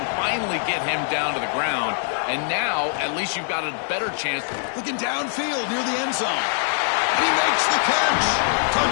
finally get him down to the ground. And now, at least you've got a better chance. Looking downfield near the end zone. He makes the catch.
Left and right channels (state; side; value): silent; right; 63 dB below the other